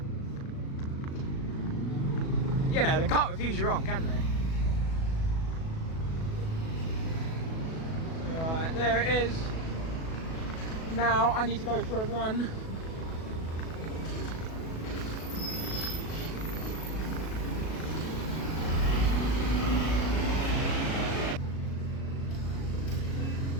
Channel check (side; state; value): right; late; 37 ms